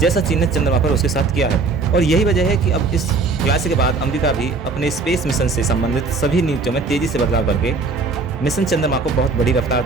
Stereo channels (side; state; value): left; quieter; 4.1 dB